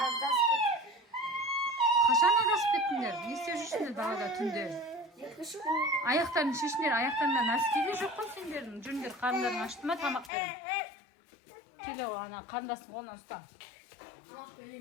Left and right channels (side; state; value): right; drops out; at 10.3 s